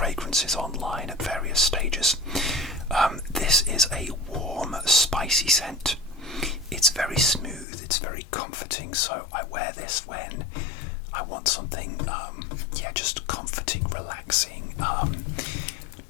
online at various stages. This is a warm, spicy scent. It's very smooth, it's very comforting, so I wear this when I want something, just comforting, relaxing.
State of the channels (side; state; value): right; drops out; at 7.7 s